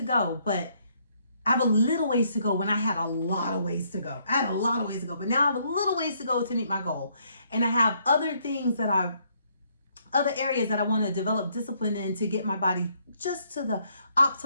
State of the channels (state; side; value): inverted; both; correlation -0.70